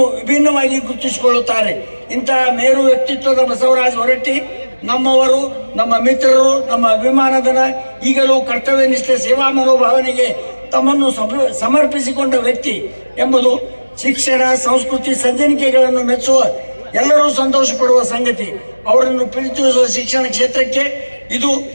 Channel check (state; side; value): inverted; both; correlation -1.00